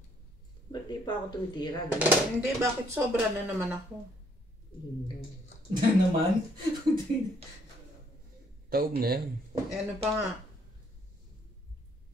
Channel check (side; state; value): both; normal; correlation 0.67